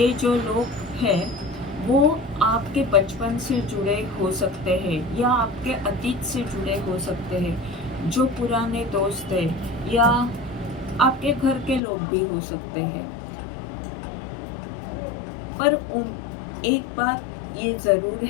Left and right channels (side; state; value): right; drops out; at 11.8 s